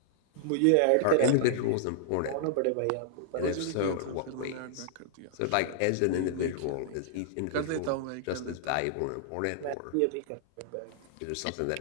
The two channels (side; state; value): both; different; correlation -0.01